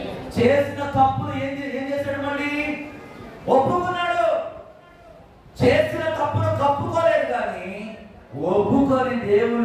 చేసిన తప్పులు ఏం చేశాడు? మళ్ళీ ఒప్పుకున్నాడు. చేసిన తప్పును కప్పుకోలేదు, కానీ ఒప్పుకొని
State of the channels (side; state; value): both; identical; correlation 1.00